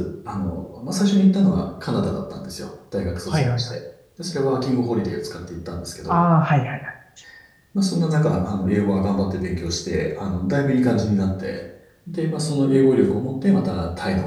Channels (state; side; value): identical; both; correlation 1.00